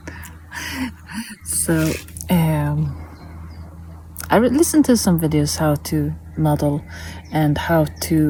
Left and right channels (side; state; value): both; identical; correlation 1.00